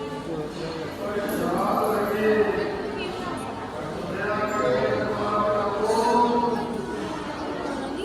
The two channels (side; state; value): both; identical; correlation 1.00